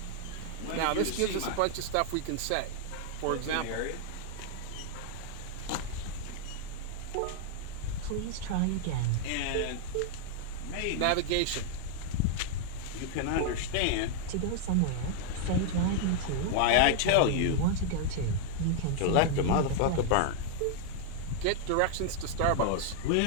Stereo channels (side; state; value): both; different; correlation 0.00